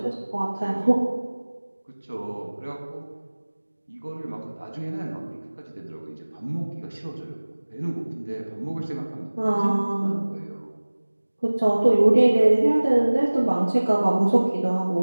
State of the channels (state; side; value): inverted; both; correlation -1.00